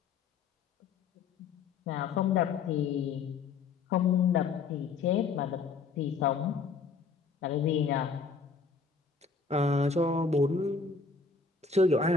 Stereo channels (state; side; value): quieter; right; 5.0 dB